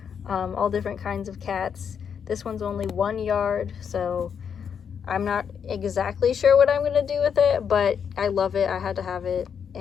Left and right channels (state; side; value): quieter; right; 7.3 dB